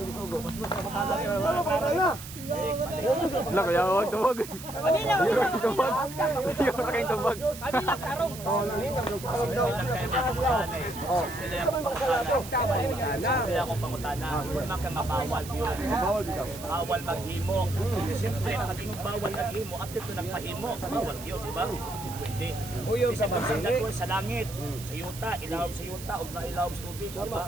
isugo? Mas makakala na. Lak, huwag tubag. Yung tubag. Sila akong pangutana, huwag kang mabawal yun. Bawal maghimo. Siyempre, nakagingong bawal naghimo, at ito nagpahimo, bawal yun, di ba? Pwede. Isa ba sa langit, sa yuta, ilawom sa yuta, o ilawom sa tubig, di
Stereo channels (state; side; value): noise; right; hiss, 13 dB below the sound